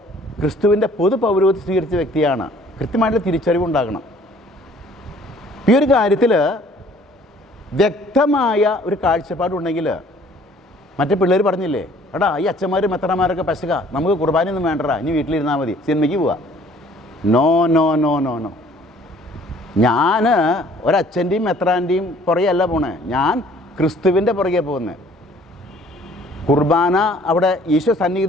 ക്രിസ്തുവിൻ്റെ പൊതു പൗരോഹിത്യം സ്വീകരിച്ച വ്യക്തിയാണ്. കൃത്യമായിട്ടുള്ള തിരിച്ചറിവുണ്ടാകണം. ഈ ഒരു കാര്യത്തിൽ വ്യക്തമായ ഒരു കാഴ്ചപ്പാടുണ്ടെങ്കിൽ, മറ്റേ പിള്ളേർ പറഞ്ഞില്ലേ, എടാ ഈ അച്ഛന്മാരും മെത്രന്മാരൊക്കെ പശക, നമുക്ക് കുർബാനയൊന്നും വേണ്ടടാ, ഇനി വീട്ടിലിരുന്നാൽ മതി, സിനിമയ്ക്ക് പോവാ. No no no no no. ഞാൻ ഒരച്ഛൻ്റെയും മെത്രാൻ്റെയും പുറകെയല്ല പോണേ, ഞാൻ ക്രിസ്തുവിൻ്റെ പുറകെ പോകുന്നത്. കുർബാന അവിടെ ഈശോ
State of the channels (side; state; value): both; normal; correlation 0.56